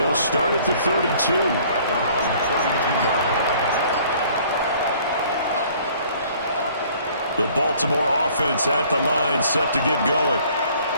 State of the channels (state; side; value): inverted; both; correlation -0.56